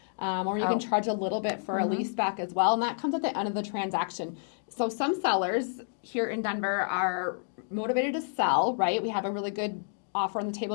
or you can charge a little bit for a lease back as well, and that comes at the end of the transaction. So some sellers here in Denver are motivated to sell, right? We have a really good offer on the table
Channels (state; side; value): silent; right; digital silence